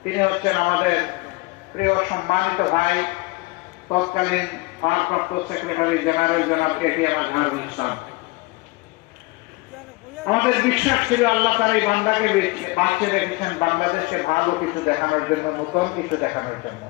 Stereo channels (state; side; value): quieter; right; 23.7 dB